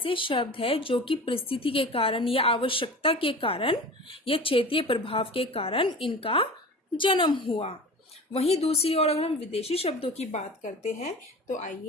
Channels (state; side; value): normal; both; correlation 0.36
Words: शब्द है जो कि परिस्थिति के कारण या आवश्यकता के कारण या क्षेत्रीय प्रभाव के कारण इनका जन्म हुआ। वहीं दूसरी ओर अगर हम विदेशी शब्दों की बात करते हैं तो